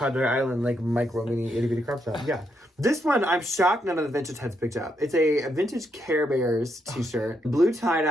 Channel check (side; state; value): both; normal; correlation 0.79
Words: Island, like, micro mini itty bitty crop top. Yeah. This one, I'm shocked none of the vintage heads picked up. It's a vintage Care Bears t-shirt. Blue